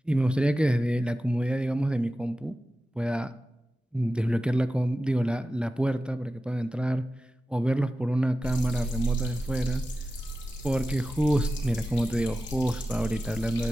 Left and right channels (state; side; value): normal; both; correlation 0.94